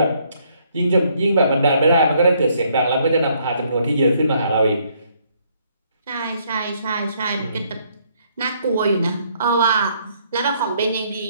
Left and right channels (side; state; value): both; inverted; correlation -0.68